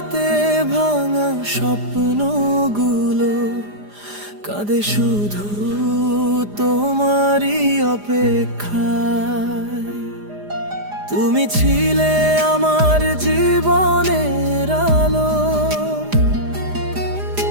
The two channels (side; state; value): left; late; 4.9 ms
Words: ভাঙা স্বপ্নগুলো কাঁদে শুধু তোমারই অপেক্ষায়। তুমি ছিলে আমার জীবনের আলো,